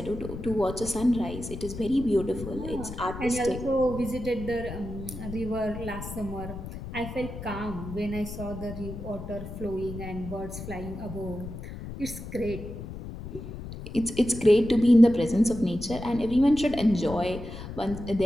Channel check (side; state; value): left; noise; rumble, 10 dB below the sound